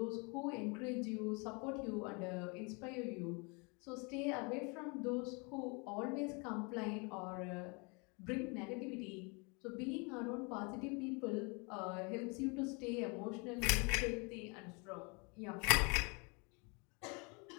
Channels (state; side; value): quieter; right; 31.4 dB